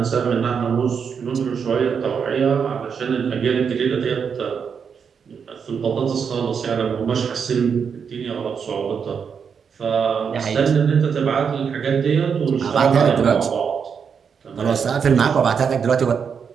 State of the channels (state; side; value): quieter; left; 6.6 dB